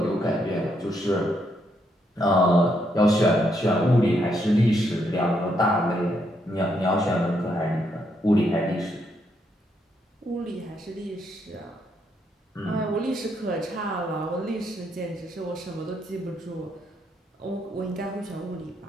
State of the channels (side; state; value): both; normal; correlation 0.76